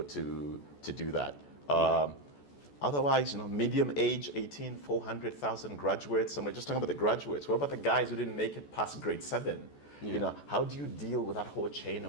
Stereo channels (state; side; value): late; right; 14 ms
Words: to do that? Otherwise, medium age, 18, 400,000 graduates, and we're just talking about the graduates. What about the guys who didn't make it past grade 7? How do you deal with that whole chain